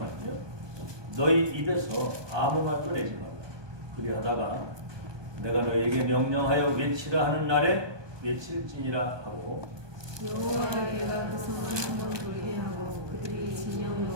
너희 입에서 아무 말도 내지 말라. 그리하다가 내가 너희에게 명령하여 외치라 하는 날에 외칠지니라 하고 여호와께가 그 성을 돌게 하고 그들이 진영에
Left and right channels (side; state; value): left; late; 1.2 ms